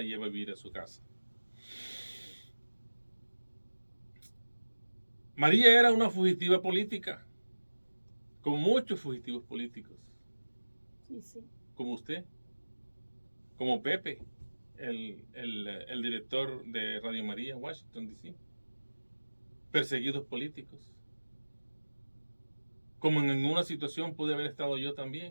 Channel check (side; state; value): both; inverted; correlation -1.00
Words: lleva a vivir a su casa. María era una fugitiva política, como muchos fugitivos políticos. Sí, sí. Como usted, como Pepe, el director de Radio María en Washington, D.C. Perseguidos políticos. Como en una situación pude haber estado yo